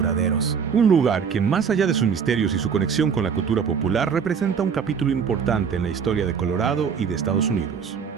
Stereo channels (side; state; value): left; quieter; 6.6 dB